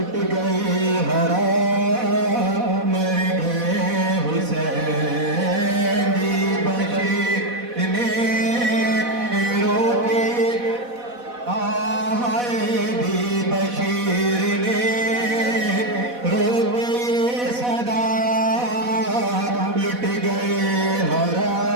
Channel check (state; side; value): late; left; 4.1 ms